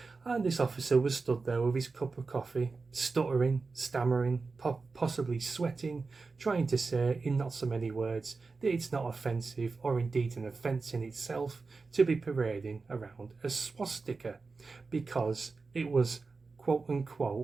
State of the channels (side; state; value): left; quieter; 4.2 dB